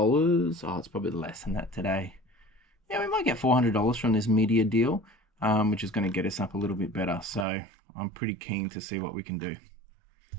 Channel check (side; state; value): left; drops out; at 7.5 s